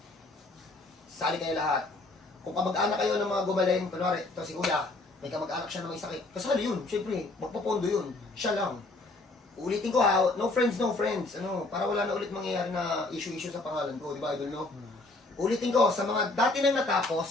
sali kayo lahat. Kung kamag-anak kayo ng mga gumaling, kunwari, ito si Kuya, may kamag-anak siya na may sakit, kasali yun, syempre, magpapondo yun, siya lang. Ulitin ko ha, no friends, ano, para wala na ulit mangyayari na issue sa pangalan ko, di ba idol, no? Ulitin ko, sa mga dati nang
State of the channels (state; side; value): quieter; right; 3.0 dB